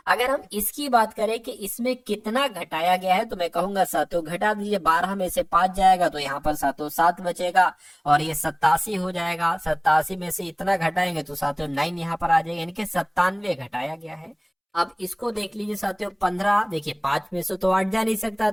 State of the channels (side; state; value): both; identical; correlation 1.00